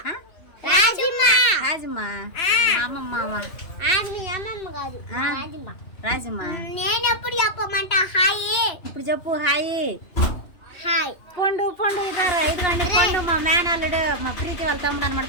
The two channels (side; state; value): right; late; 2.9 ms